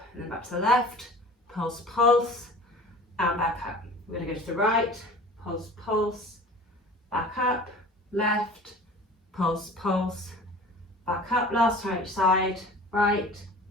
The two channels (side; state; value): both; normal; correlation 0.42